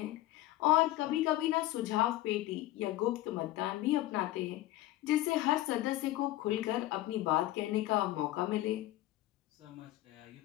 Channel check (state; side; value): quieter; right; 15.8 dB